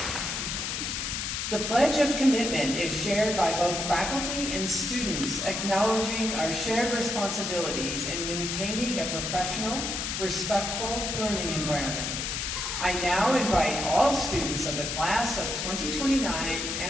The Pledge of Commitment is shared by both faculty and students, acknowledging our shared responsibilities in maintaining a professional, respectful learning environment. I now invite all students of the class of 2029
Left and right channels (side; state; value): left; noise; hiss, 2 dB below the sound